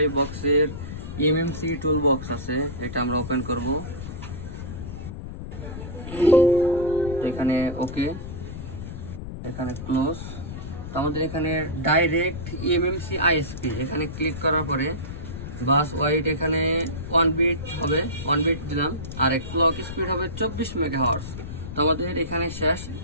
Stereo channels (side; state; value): left; noise; rumble, 9 dB below the sound